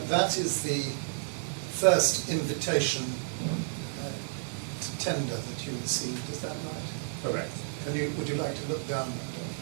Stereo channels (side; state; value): left; silent; digital silence